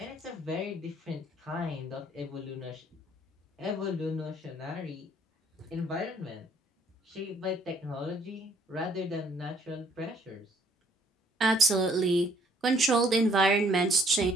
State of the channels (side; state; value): both; normal; correlation 0.62